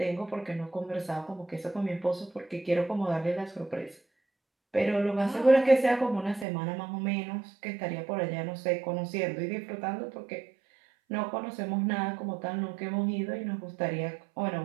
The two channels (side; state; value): left; drops out; at 6.5 s